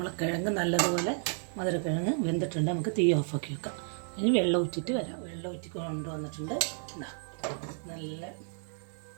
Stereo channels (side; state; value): left; silent; 57 dB below the other